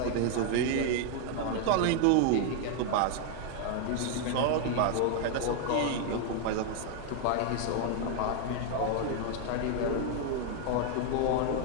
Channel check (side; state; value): both; different; correlation 0.00